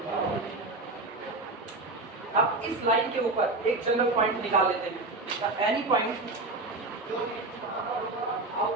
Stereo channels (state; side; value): quieter; left; 3.2 dB